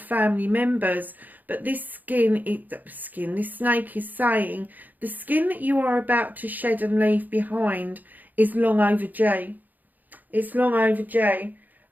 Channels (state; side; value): late; left; 0.084 ms